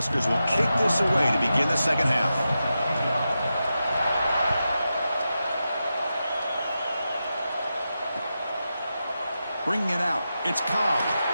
will kick this away to begin the second half. Bringing it out. It's Cobb.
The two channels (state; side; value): inverted; both; correlation -0.90